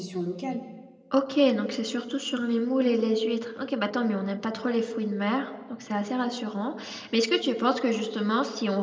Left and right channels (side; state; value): both; identical; correlation 1.00